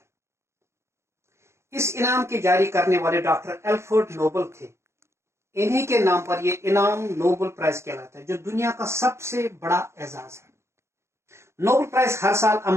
اس انعام کے جاری کرنے والے ڈاکٹر الفریڈ نوبل تھے۔ انہی کے نام پر یہ انعام نوبل پرائز کہلاتا ہے، جو دنیا کا سب سے بڑا اعزاز ہے۔ نوبل پرائز ہر سال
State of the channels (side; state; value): left; late; 0.13 ms